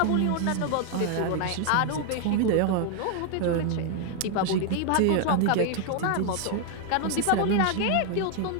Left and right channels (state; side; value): different; both; correlation 0.00